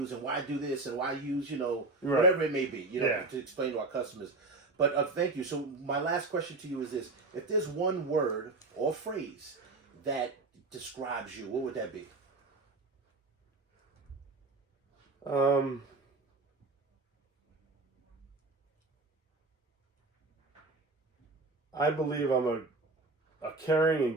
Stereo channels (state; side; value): quieter; left; 3.4 dB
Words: and why do this and why use whatever it may be, to explain to our customers. But thank you. So my last question to you is this: if there's one word or phrase that describes you, what would that be? I believe I'm a caring